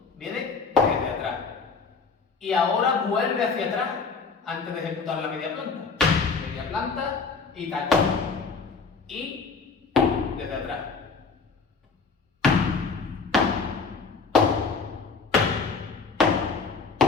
viene desde atrás. Y ahora vuelve hacia atrás antes de ejecutar la media planta. Media planta y tacón. Y desde atrás.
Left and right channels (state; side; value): quieter; right; 4.8 dB